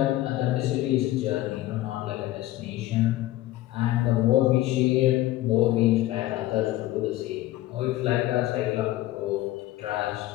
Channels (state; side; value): quieter; right; 15.7 dB